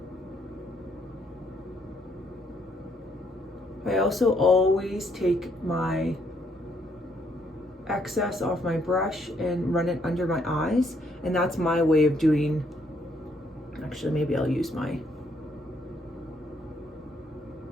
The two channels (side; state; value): both; normal; correlation 0.71